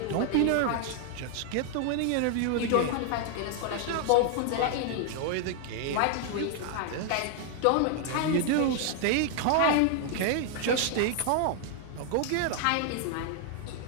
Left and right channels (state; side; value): different; both; correlation 0.00